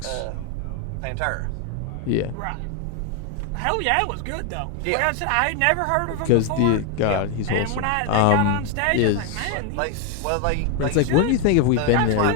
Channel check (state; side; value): different; both; correlation 0.01